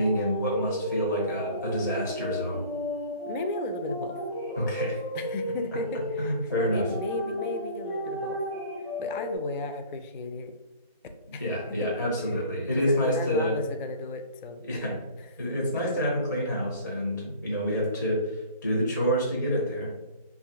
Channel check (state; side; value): inverted; both; correlation -0.45